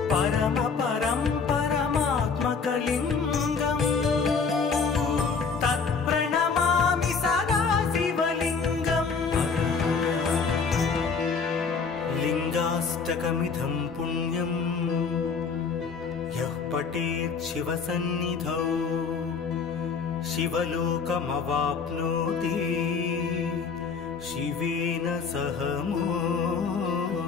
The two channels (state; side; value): quieter; right; 5.3 dB